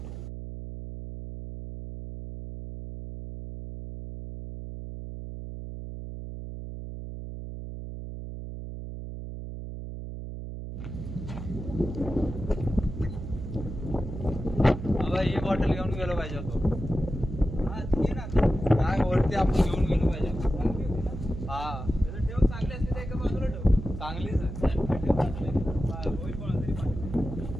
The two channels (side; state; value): right; noise; hum, 8 dB below the sound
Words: ही बॉटल घेऊन गेलो पाहिजे होतो. काय वरती आपण घेऊन गेलो पाहिजे. हा ठेव चांगली असते ते एका बाजूला ठेव. चांगलीच आहे.